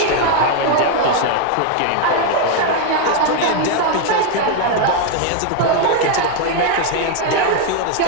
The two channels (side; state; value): both; different; correlation 0.01